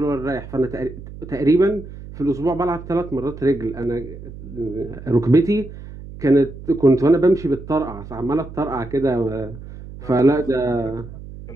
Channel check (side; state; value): right; noise; hum, 14 dB below the sound